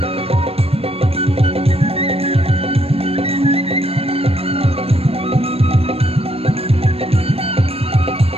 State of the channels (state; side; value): late; left; 0.28 ms